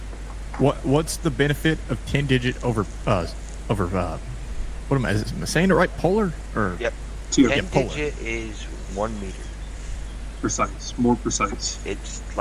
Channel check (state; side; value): identical; both; correlation 1.00